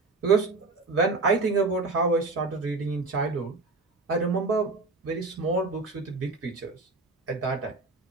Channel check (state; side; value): quieter; left; 3.7 dB